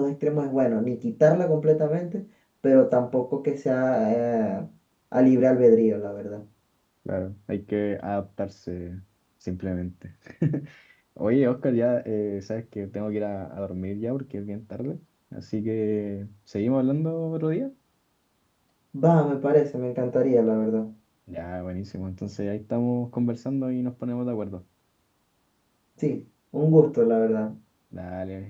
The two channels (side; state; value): both; identical; correlation 1.00